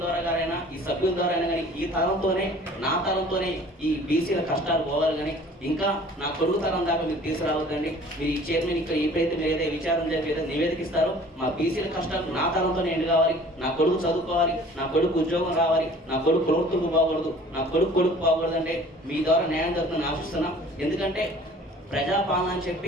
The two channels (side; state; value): both; normal; correlation 0.49